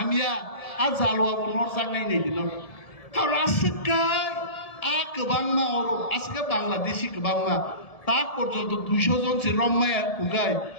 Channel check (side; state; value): right; late; 1.7 ms